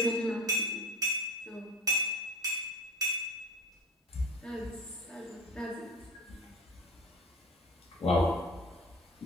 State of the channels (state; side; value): normal; both; correlation 0.32